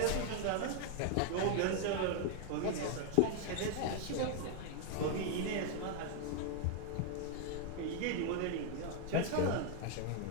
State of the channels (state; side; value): different; both; correlation 0.00